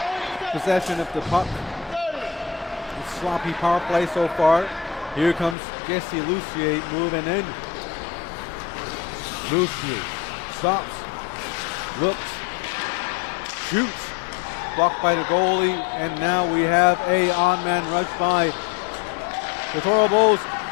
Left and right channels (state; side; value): drops out; right; at 5.6 s